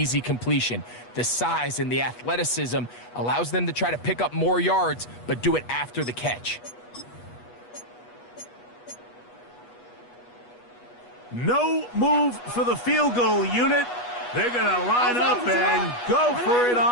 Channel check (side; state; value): right; late; 8.3 ms